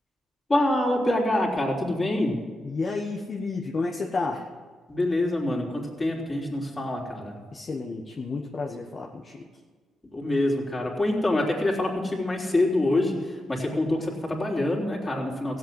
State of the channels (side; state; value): both; normal; correlation 0.89